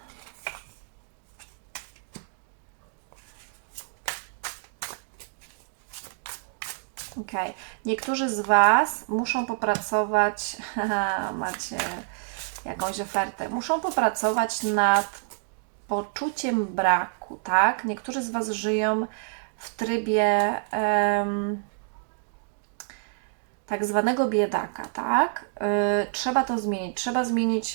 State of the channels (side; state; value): left; silent; 58 dB below the other